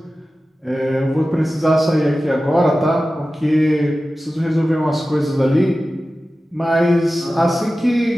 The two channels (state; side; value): normal; both; correlation 0.95